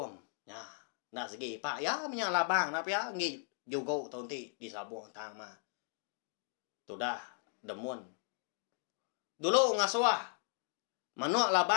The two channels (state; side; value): silent; right; 53 dB below the other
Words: Ya, nak segi pak ya menyala bang apa ya ngi juga tonti di sabung tang mah. Tu dah demun. Dulu ngasuah. Manuk